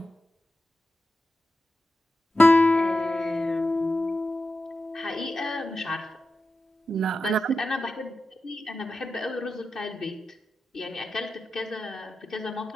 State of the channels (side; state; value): both; normal; correlation 0.91